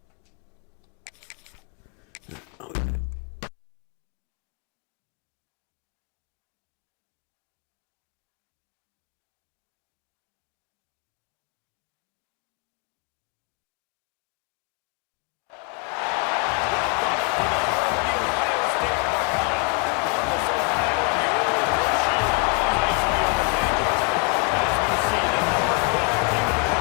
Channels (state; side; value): quieter; right; 33.8 dB